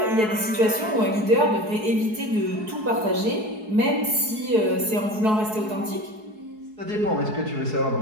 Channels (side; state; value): left; late; 4.7 ms